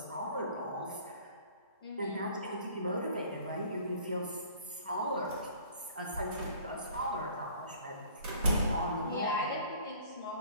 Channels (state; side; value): inverted; both; correlation -0.52